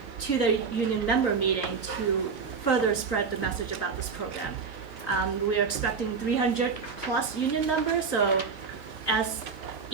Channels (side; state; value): left; quieter; 5.4 dB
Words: to the union member meeting to further spread the message about this program. We are expecting 300 plus union members, so as